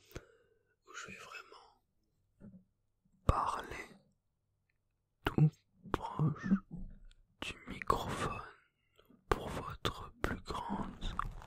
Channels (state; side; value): identical; both; correlation 1.00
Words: Où je vais vraiment parler tout proche du microphone pour votre plus grande